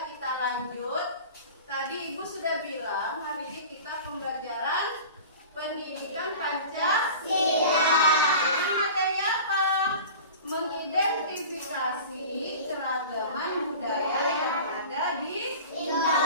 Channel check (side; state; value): both; inverted; correlation -0.38